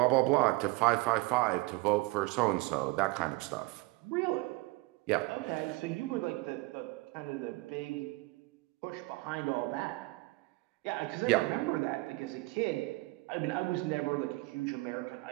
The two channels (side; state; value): left; quieter; 22.9 dB